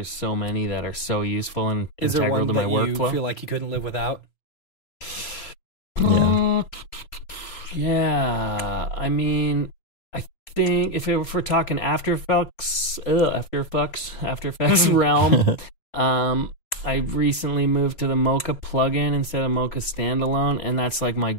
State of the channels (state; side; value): late; right; 3.5 ms